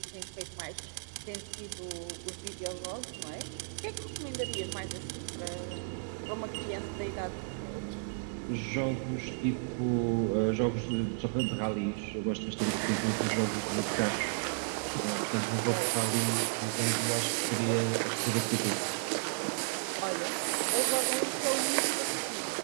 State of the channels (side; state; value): left; silent; digital silence